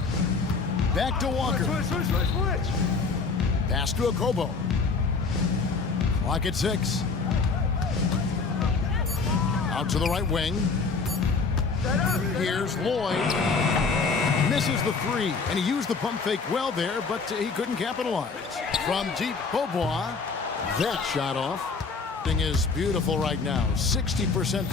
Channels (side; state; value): right; quieter; 4.6 dB